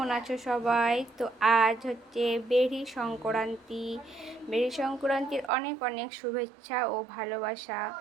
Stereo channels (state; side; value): drops out; left; at 5.5 s